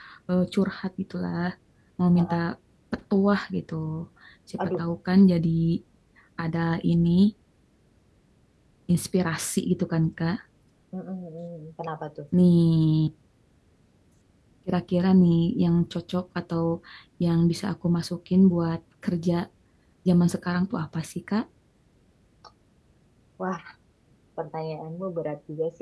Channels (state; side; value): identical; both; correlation 1.00